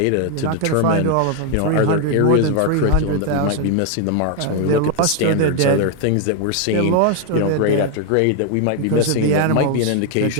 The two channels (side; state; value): both; different; correlation 0.01